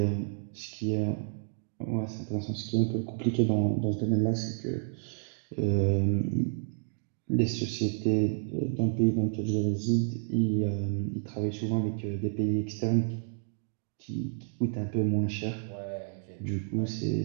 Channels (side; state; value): left; silent; digital silence